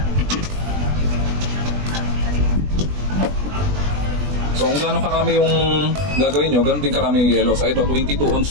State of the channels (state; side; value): late; left; 20 ms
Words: So kung gaano karami yung gagawin nyo, ganoon din karami yung yellow. So ito, 22